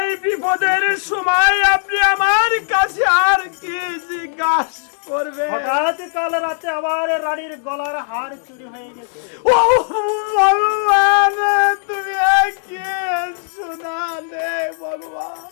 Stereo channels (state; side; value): silent; right; digital silence